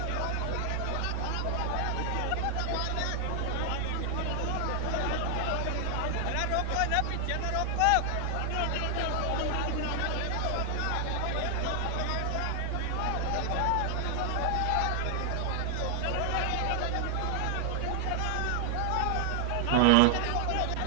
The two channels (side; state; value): both; different; correlation 0.00